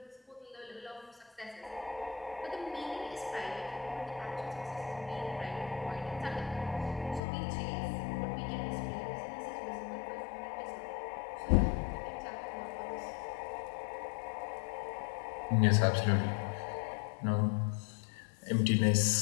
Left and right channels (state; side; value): drops out; right; at 7.2 s